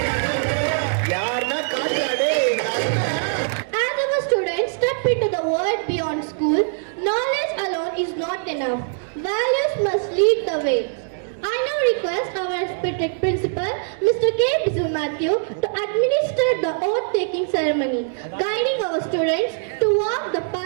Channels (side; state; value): left; silent; digital silence